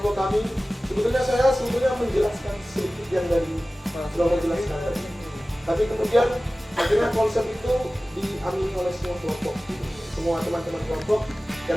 kami, sebetulnya saya menjelaskan sedikit yang dari sudah menjelaskan tadi. Tapi kemudian akhirnya konsep itu diamini oleh semua kelompok, semua teman-teman kelompok,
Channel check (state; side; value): normal; both; correlation 0.97